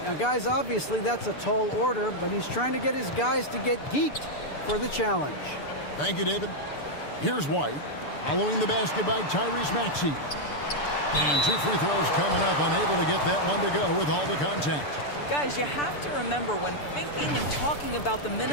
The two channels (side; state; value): right; late; 6.8 ms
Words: Now, guys, obviously that's a tall order, but he's trying to get his guys to get geeked for the challenge. Thank you, David. Here's White, following the basket by Tyrese Maxey. And 2 free throws coming up, unable to get that one to go with all the contact. Guys, you have to remember when thinking and talking about the